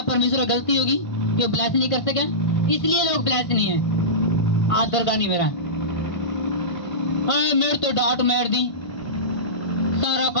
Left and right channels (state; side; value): late; right; 1.5 ms